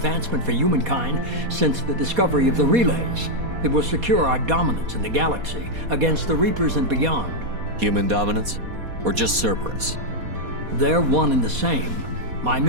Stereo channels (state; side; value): late; left; 4.2 ms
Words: for humankind since the discovery of the relays. It will secure our dominance in the galaxy against the Reapers and beyond. Human dominance? Or just Cerberus? They're one and the same. My